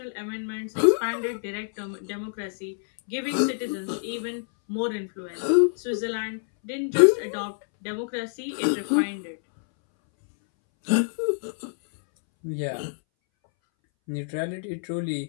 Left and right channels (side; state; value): right; silent; 60 dB below the other